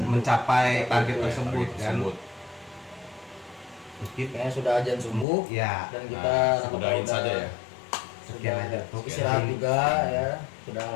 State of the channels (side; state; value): right; drops out; at 5.2 s